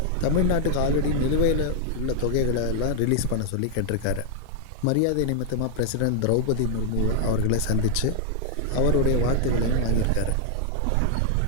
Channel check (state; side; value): different; both; correlation 0.00